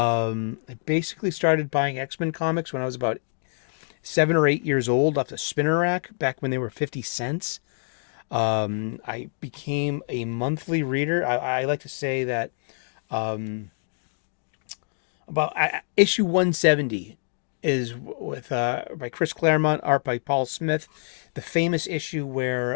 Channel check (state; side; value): silent; right; digital silence